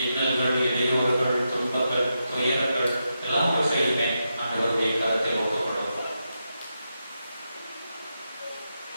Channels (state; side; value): inverted; both; correlation -0.86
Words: இன்னல்கள், இடையூறுகள், துன்பங்கள், துயரங்கள் எல்லாவற்றையுமே ஆண்டவருடைய கருத்தில் ஒப்புக் கொடுப்பார்.